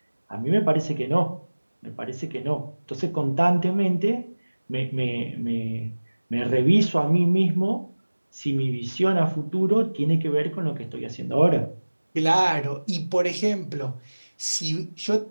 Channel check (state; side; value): inverted; both; correlation -1.00